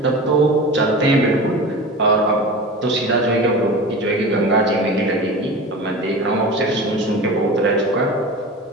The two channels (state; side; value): normal; both; correlation 0.32